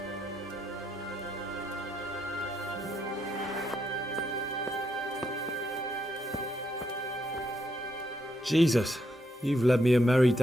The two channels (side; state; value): both; normal; correlation 0.78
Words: Jesus, you've led me a merry